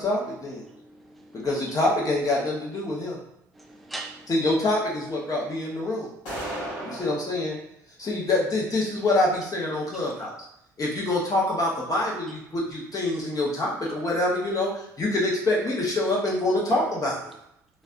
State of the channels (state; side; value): normal; both; correlation 0.56